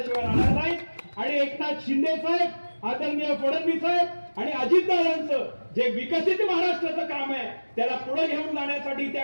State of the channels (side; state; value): both; inverted; correlation -1.00